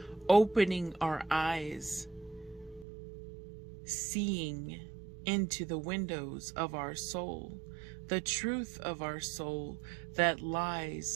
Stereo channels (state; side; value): drops out; left; at 2.9 s